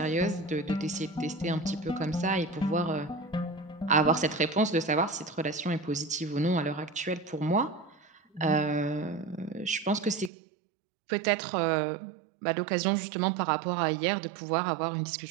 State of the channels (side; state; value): left; drops out; at 10.3 s